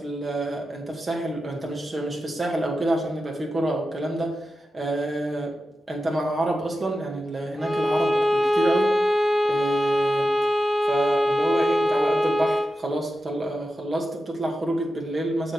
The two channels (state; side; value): normal; both; correlation 0.91